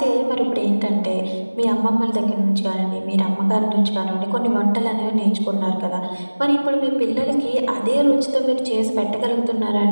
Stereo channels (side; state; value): both; inverted; correlation -1.00